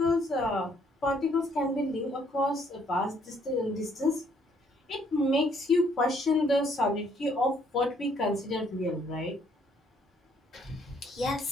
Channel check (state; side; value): normal; both; correlation 0.67